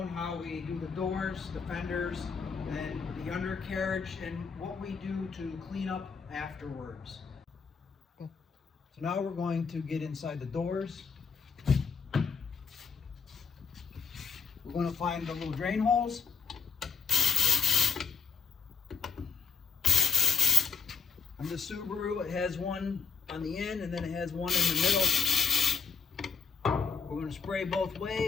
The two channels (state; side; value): quieter; right; 5.6 dB